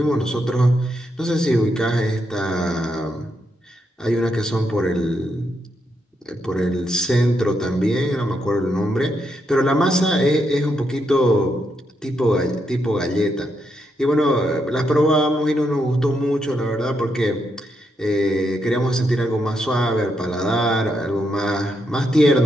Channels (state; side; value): normal; both; correlation 0.80